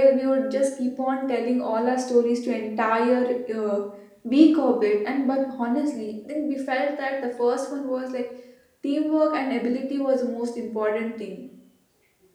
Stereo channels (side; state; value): both; identical; correlation 1.00